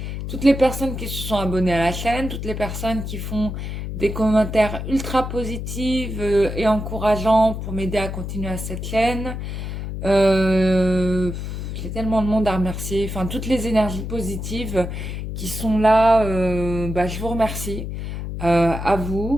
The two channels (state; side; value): noise; left; hum, 6 dB below the sound